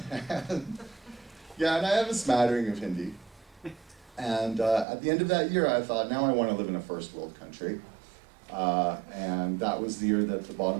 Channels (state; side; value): drops out; left; at 4.9 s